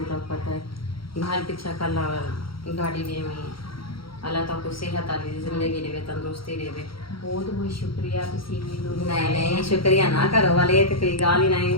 तो पता है घर पीछा कल गाड़ी ले में अल्लाह तो को सेहत वाली जिंदगी देवे, तंदुरुस्ती देवे। बहुत बहुत शुक्रिया। नहीं शुक्रिया ना करो वाले तो कोई गाल ही नहीं,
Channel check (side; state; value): right; late; 0.74 ms